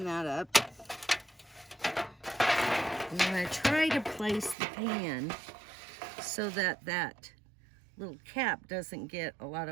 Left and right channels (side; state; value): left; drops out; at 4.5 s